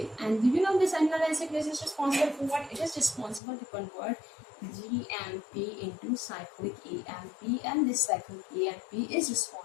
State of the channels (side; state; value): right; drops out; at 3.4 s